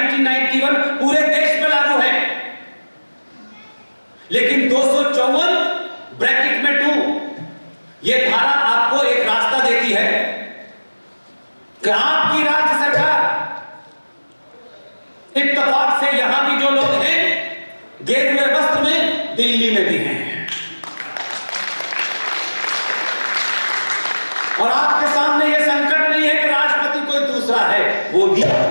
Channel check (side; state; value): both; inverted; correlation -1.00